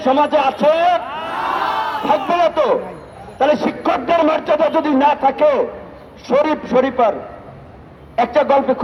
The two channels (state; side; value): identical; both; correlation 1.00